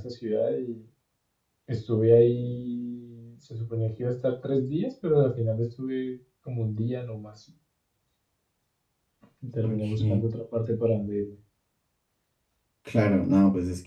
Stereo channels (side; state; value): both; identical; correlation 1.00